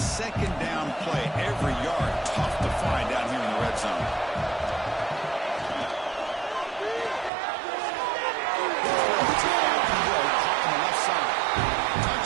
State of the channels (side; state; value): left; drops out; at 7.3 s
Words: down play. Every yard tough to find down here in the red zone.